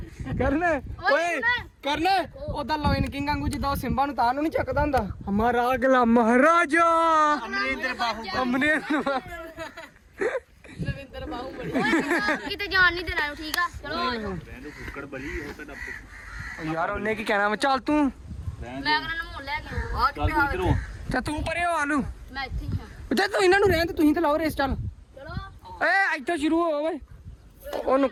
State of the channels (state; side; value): identical; both; correlation 1.00